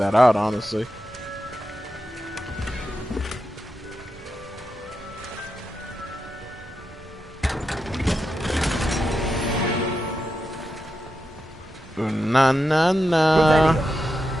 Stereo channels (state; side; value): normal; both; correlation 0.88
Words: out, honestly. Na na na.